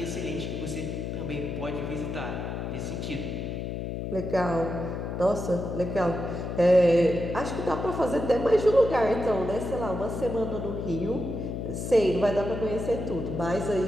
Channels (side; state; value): left; noise; hum, 4 dB below the sound